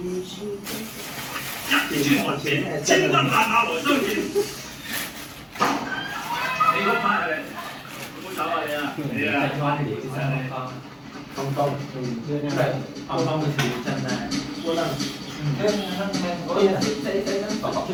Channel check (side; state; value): both; identical; correlation 1.00